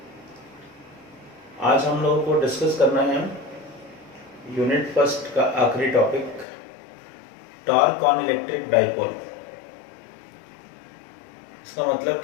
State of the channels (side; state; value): right; drops out; at 6.5 s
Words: आज हम लोगों को डिस्कस करना है यूनिट फर्स्ट का आखिरी topic, torque on electric dipole. इसका मतलब